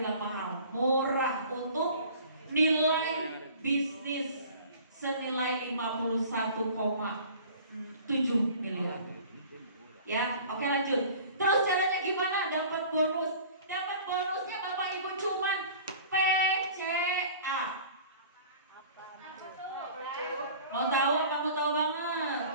mahal, murah untuk nilai bisnis senilai 51,7 miliar. Ya, oke lanjut. Terus caranya gimana? Dapat bonus. Dapat bonusnya Bapak Ibu cuman PCA. Mau tahu apa mau tahu banget?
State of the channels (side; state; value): both; inverted; correlation -0.45